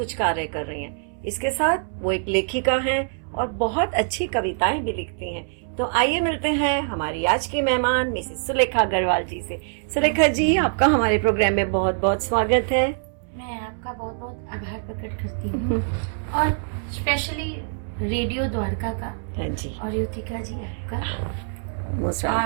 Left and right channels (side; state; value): left; silent; 62 dB below the other